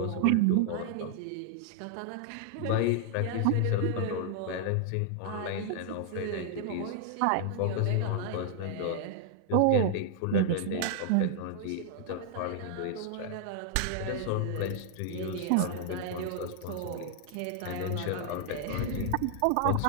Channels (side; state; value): both; different; correlation -0.01